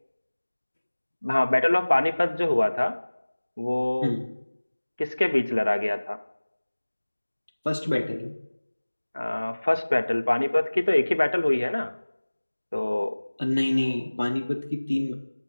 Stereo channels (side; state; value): both; inverted; correlation -1.00